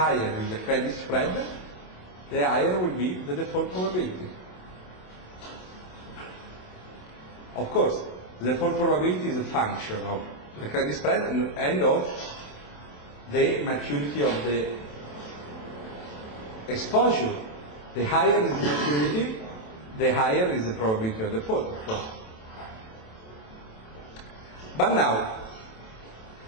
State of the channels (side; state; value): right; late; 27 ms